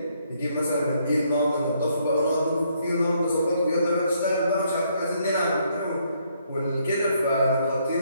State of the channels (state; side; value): inverted; both; correlation -0.71